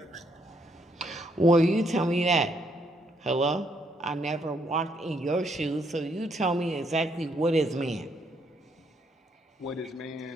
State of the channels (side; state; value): both; normal; correlation 0.73